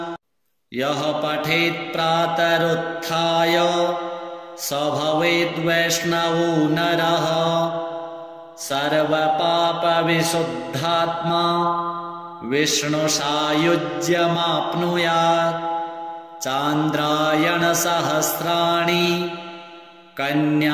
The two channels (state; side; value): identical; both; correlation 1.00